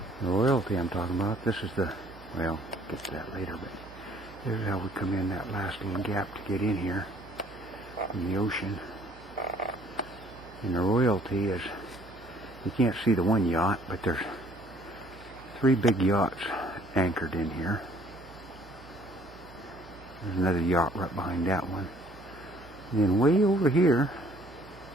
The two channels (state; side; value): normal; both; correlation 0.59